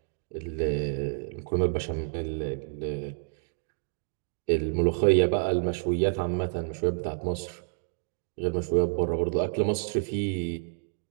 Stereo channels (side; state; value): left; silent; digital silence